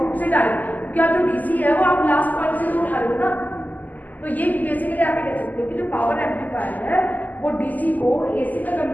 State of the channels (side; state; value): right; late; 0.082 ms